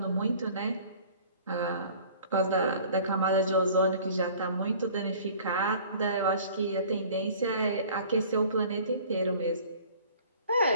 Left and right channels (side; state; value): both; inverted; correlation -0.48